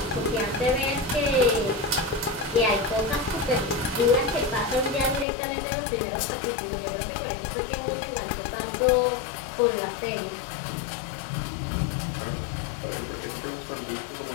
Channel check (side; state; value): right; drops out; at 5.2 s